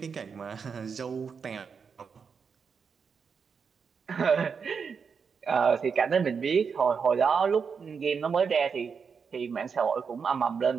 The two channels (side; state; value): left; quieter; 6.0 dB